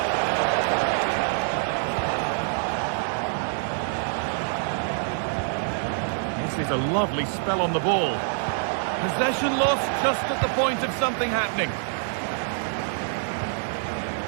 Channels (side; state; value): left; silent; 59 dB below the other